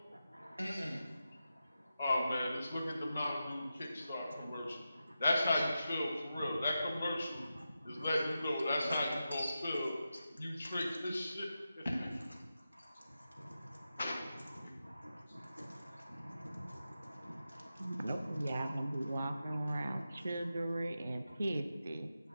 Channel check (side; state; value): both; inverted; correlation -0.90